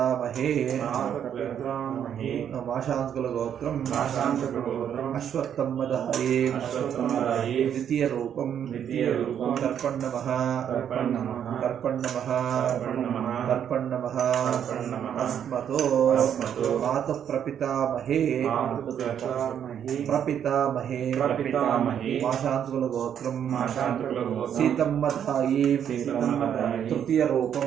మాశాంతకుల గోత్రం అశ్వత్థమ్మదాయే ద్వితీయ రూపం తర్పణవః అస్మతో మాతః ప్రపితామహే మాశాంతకుల గోత్రం సీతమ్మదాయే తృతీయ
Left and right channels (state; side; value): quieter; left; 9.0 dB